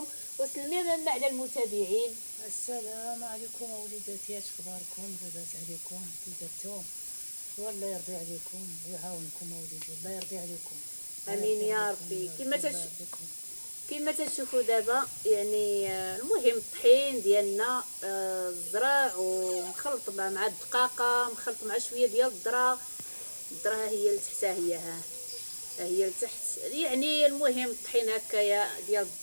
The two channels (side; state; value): both; inverted; correlation -1.00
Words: وسلمي منا على المتابعين. السلام عليكم وليداتي، اش اخباركم؟ لاباس عليكم؟ كي درتو؟ والله يرضي عليكم ويعاونكم اوليدي، الله يرضي عليكم. امين يا ربي. كما تشوفوا دابا يعني المهم الطحين ديالنا الزرع ومخلط مع الدقاقه، مخلط مع شويه ديال الذره. الذره هي لتحتها، هي لتحت يعني. المهم الطحين هكايا ديال